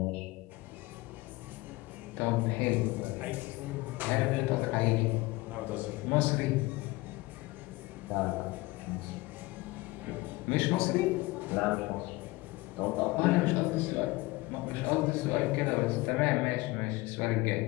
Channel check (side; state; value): right; quieter; 21.3 dB